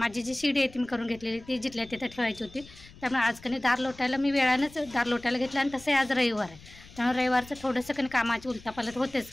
जी शिडी आहे ती मी करून घेतलेली, ती जिथल्या तिथं ठेवायची होती. त्यामुळे आज कणी दार लोटायला मी वेळानंच दार लोटायला घेतलं. आणि तसंही आज रविवार आहे, त्यामुळे रविवारचं थोडंसं कणी कामाची उलटापालट होतेच,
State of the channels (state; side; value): noise; left; rumble, 21 dB below the sound